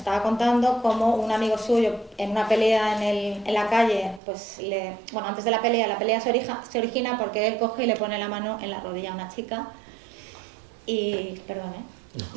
contando cómo un amigo suyo en una pelea en la calle, pues bueno, antes de la pelea se origina porque él coge y le pone la mano en la rodilla a una chica y, perdón,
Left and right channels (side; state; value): left; drops out; at 4.2 s